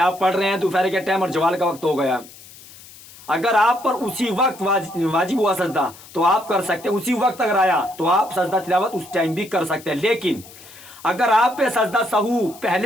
آپ پڑھ رہے ہیں دوپہر کے ٹائم اور زوال کا وقت ہو گیا، اگر آپ پر اسی وقت واجب ہوا سجدہ تو آپ کر سکتے ہیں، اسی وقت اگر آیا تو آپ سجدہ تلاوت اس ٹائم بھی کر سکتے ہیں۔ لیکن اگر آپ پہ سجدہ سہو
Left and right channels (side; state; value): left; noise; hiss, 20 dB below the sound